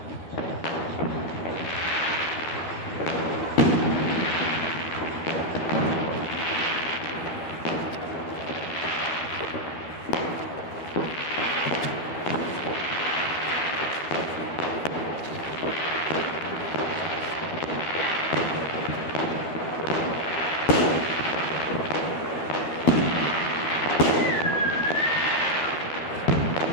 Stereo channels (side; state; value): right; late; 13 ms